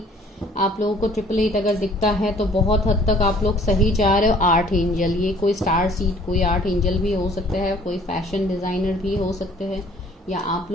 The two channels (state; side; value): normal; both; correlation 0.55